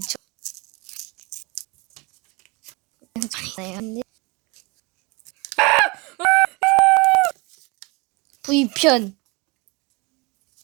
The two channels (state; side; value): quieter; left; 27.3 dB